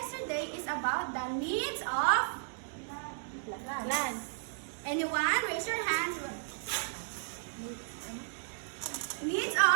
is about the needs of Plants. anyone? Raise your hands. Needs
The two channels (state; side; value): silent; left; digital silence